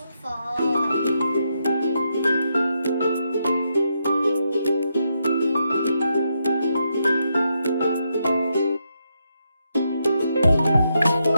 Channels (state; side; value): inverted; both; correlation -0.81